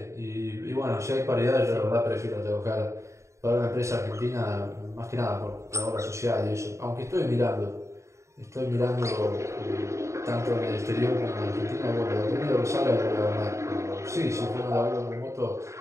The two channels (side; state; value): left; late; 0.14 ms